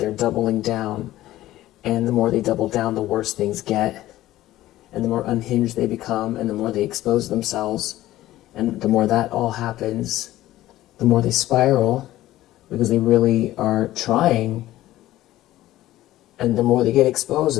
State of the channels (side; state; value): right; quieter; 15.2 dB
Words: doubling down. And the more they double down, the worse things get. And the more unhinged they become, and the more they expose themselves. And the more that all happens, the more they spiral, because they really are trying. And the more they get exposed,